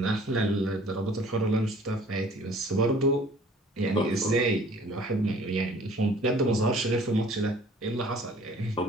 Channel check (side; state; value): both; normal; correlation 0.52